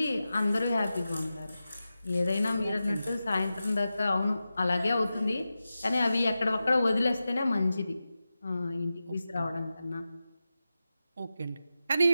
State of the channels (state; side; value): inverted; both; correlation -0.92